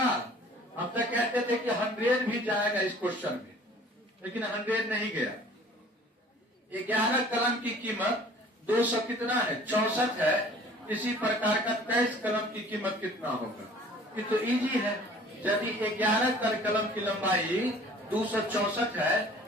हम तो कहते थे कि 100 भी जाएगा इस क्वेश्चन में, लेकिन 100 नहीं गया। 11 कलम की कीमत 200 कितना है? 64 है। इसी प्रकार का 23 कलम की कीमत कितना होगा? ये तो इजी है। यदि 11 कलम की लंबाई 264 है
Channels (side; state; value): both; normal; correlation 0.50